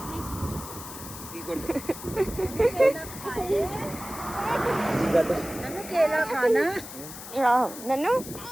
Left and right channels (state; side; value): noise; left; hiss, 12 dB below the sound